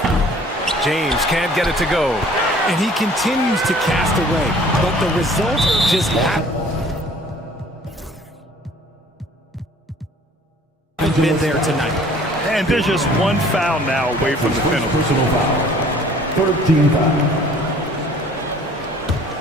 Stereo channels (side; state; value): both; normal; correlation 0.53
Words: James can't get it to go. And he continues to cast away, but the result just haven't been there tonight. And there's just 1 foul now away from the penalty. Personal foul. 13 foul.